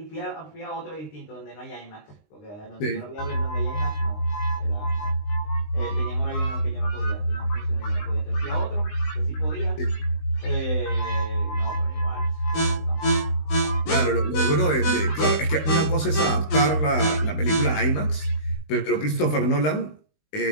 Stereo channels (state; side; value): late; right; 19 ms